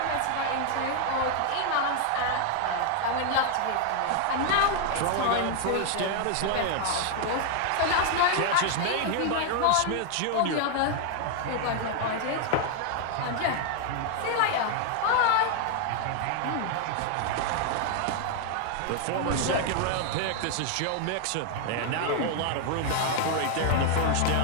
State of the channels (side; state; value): both; different; correlation 0.00